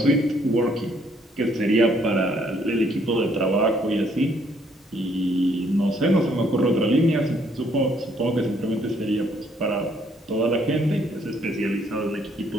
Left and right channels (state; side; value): normal; both; correlation 0.67